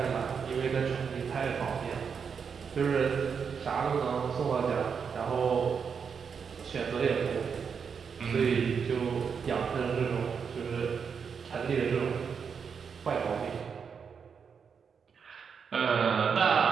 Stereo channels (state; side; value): quieter; left; 6.4 dB